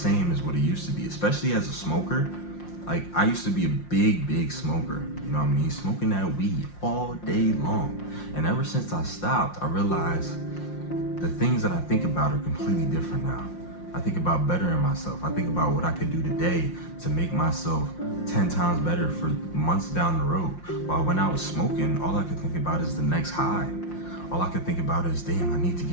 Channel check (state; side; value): late; right; 5.7 ms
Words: as what it used to be, especially as a smoker. Like, I used to be a big smoker, you know what I mean? Smoking that weed all day long. And ever since I stopped, I realized the things that I think about are completely different now. I think about bettering myself. I think about what I could do today to make myself 10 times better for months down the road. While when I was smoking, all I could think about is the next high. All I could think about is, damn, I need to